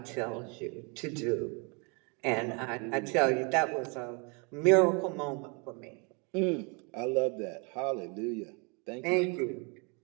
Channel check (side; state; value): left; quieter; 33.0 dB